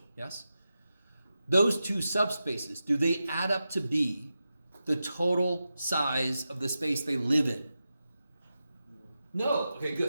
yes? Those two subspaces, do they add up to be the total size of the space they live in? No. Okay,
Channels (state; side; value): inverted; both; correlation -0.91